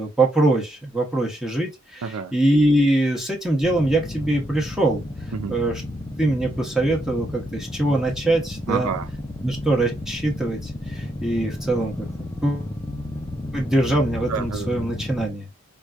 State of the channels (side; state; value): both; normal; correlation 0.79